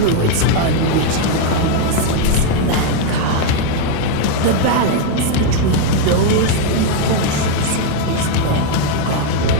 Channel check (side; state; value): both; different; correlation 0.01